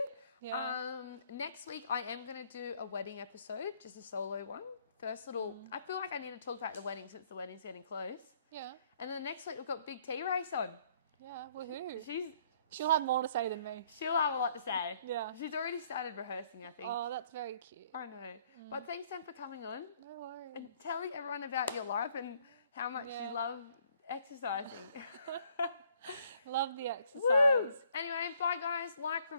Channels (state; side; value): inverted; both; correlation -0.64